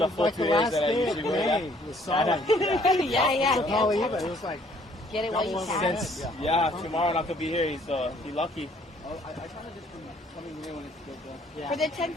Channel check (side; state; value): both; normal; correlation 0.62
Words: the full like the 2 years last that I day usually of wear. May was solid. Yeah, yeah. It was like get it while you can. Since, yeah, tomorrow not gonna be here, so he lucky. I kind of just been coming here when it's good though. For the